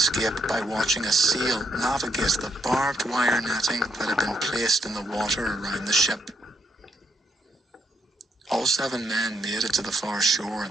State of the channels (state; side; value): normal; both; correlation 0.76